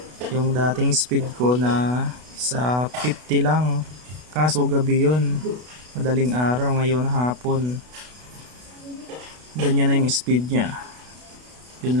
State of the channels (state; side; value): late; left; 32 ms